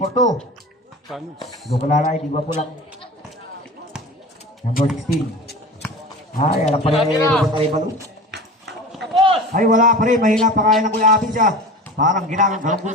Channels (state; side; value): normal; both; correlation 0.35